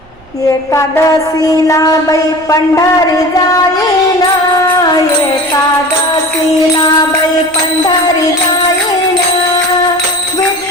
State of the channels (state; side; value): noise; right; rumble, 27 dB below the sound